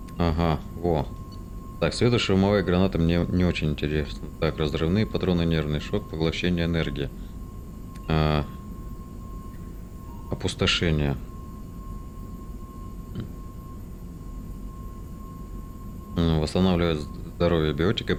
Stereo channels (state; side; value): identical; both; correlation 1.00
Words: Ага, во. Так, светошумовая граната мне не очень интересна. Так, разрывные патроны, нервный шок, поглощение энергии. Опустошение. Восстанавливает здоровье биотика